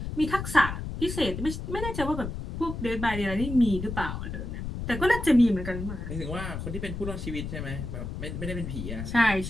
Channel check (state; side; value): noise; left; rumble, 6 dB below the sound